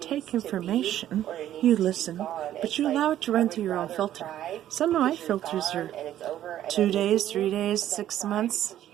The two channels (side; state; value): left; quieter; 12.1 dB